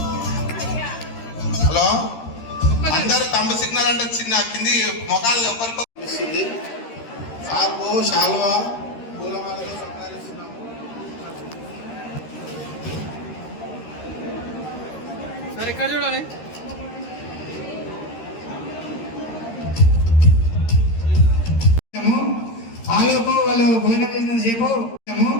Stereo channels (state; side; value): late; right; 13 ms